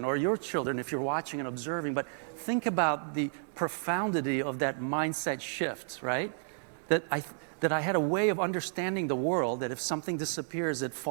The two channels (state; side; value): silent; left; digital silence